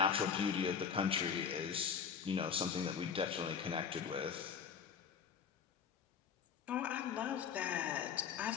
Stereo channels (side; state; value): right; quieter; 6.9 dB